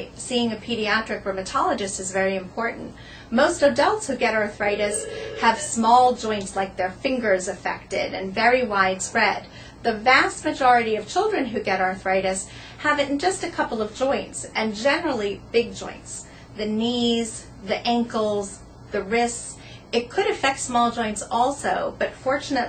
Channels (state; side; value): identical; both; correlation 1.00